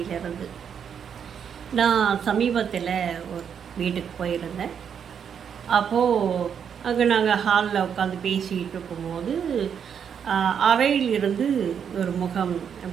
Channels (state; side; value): quieter; left; 7.7 dB